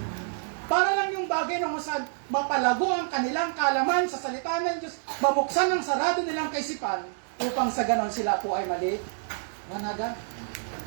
Para lang yung bagay na saan mapalago ang kanilang kalaman sa salita ng Diyos, mabuksan ang sarado nilang kaisipan, upang sa ganon sila po ay mali. Managa.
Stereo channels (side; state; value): left; silent; digital silence